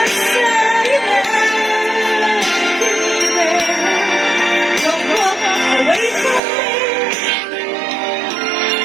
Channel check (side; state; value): left; drops out; at 6.4 s